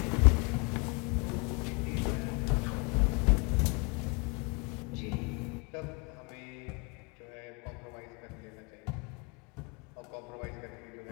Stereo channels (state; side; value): quieter; right; 32.2 dB